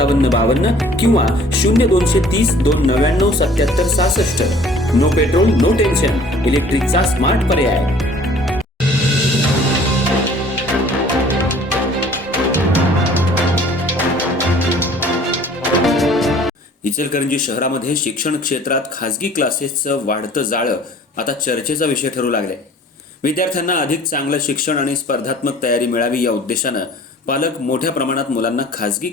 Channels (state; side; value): normal; both; correlation 0.52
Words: 52 किंवा 0230 299 77 66। नो पेट्रोल नो टेन्शन, इलेक्ट्रिकचा स्मार्ट पर्याय। इचलकरंजी शहरामध्ये शिक्षण क्षेत्रात खासगी क्लासेसचं वाढतं जाळं आता चर्चेचा विषय ठरू लागले। विद्यार्थ्यांना अधिक चांगलं शिक्षण आणि स्पर्धात्मक तयारी मिळावी या उद्देशानं पालक मोठ्या प्रमाणात मुलांना खासगी